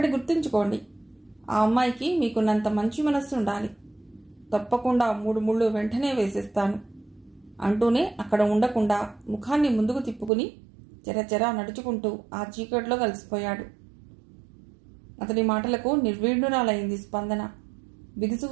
గుర్తుంచుకోండి, ఆ అమ్మాయికి మీకున్నంత మంచి మనస్సు ఉండాలి. తప్పకుండా 3 ముళ్ళు వెంటనే వేసేస్తాను అంటూనే అక్కడ ఉండకుండా ముఖాన్ని ముందుకు తిప్పుకుని చెరచెరా నడుచుకుంటూ ఆ చీకట్లో కలిసిపోయాడు. అతడి మాటలకు నిర్వీణురాలైంది స్పందన.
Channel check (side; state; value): left; drops out; at 10.3 s